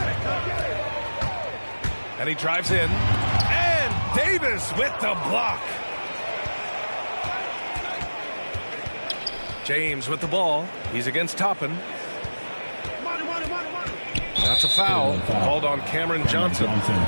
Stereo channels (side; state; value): both; inverted; correlation -1.00